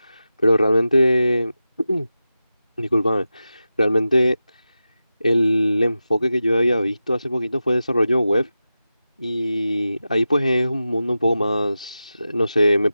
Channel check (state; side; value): inverted; both; correlation -0.93